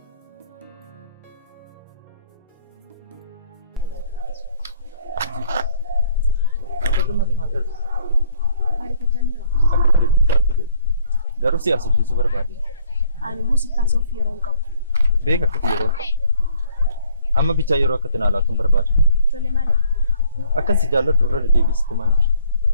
Garuu si haasofsiisuu barbaade. Ani immoo si taasisuuf yeroo hin qabu. Beeka akkati yeroo qabu. Amma bicha yeroo akka tinaalaatuun barbaada. Tole maal? Akkas jaalladhu irra deebiisitti maal jira?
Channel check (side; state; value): both; inverted; correlation -0.61